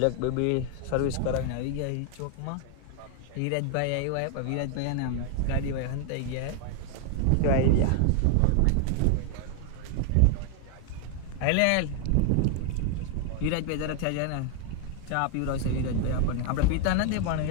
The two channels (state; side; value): different; both; correlation 0.00